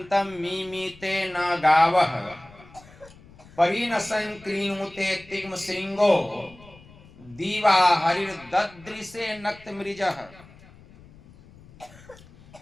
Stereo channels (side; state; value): left; noise; rumble, 23 dB below the sound